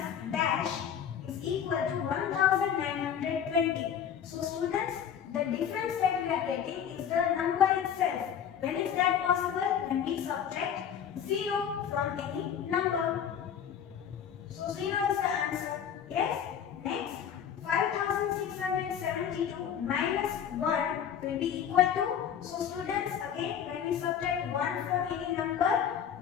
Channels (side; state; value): right; quieter; 8.7 dB